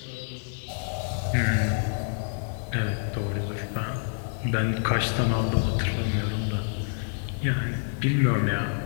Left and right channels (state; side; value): silent; right; digital silence